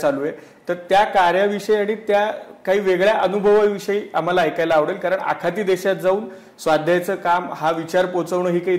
आहे. तर त्या कार्याविषयी आणि त्या काही वेगळ्या अनुभवाविषयी आम्हाला ऐकायला आवडेल. कारण आखाती देशात जाऊन स्वाध्यायाचं काम, हा विचार पोचवणं ही काही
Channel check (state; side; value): identical; both; correlation 1.00